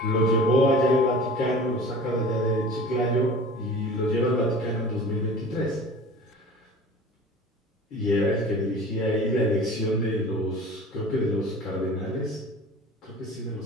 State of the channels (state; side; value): normal; both; correlation 0.41